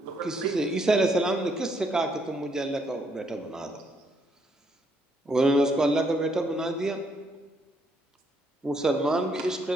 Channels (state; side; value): normal; both; correlation 0.72